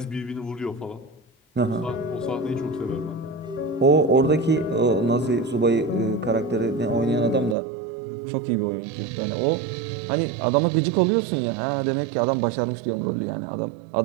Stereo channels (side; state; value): left; drops out; at 7.6 s